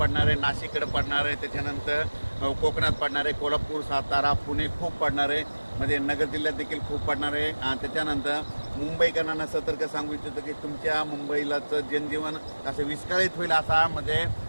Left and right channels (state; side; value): inverted; both; correlation -1.00